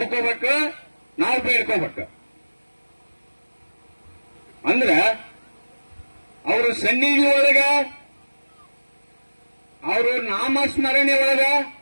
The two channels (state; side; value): inverted; both; correlation -1.00